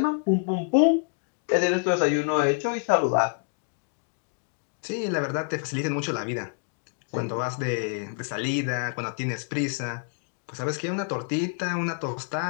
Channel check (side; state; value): right; quieter; 39.4 dB